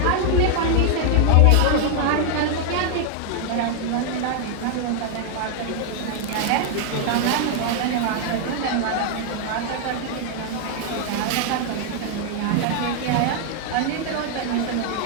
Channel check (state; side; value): different; both; correlation 0.00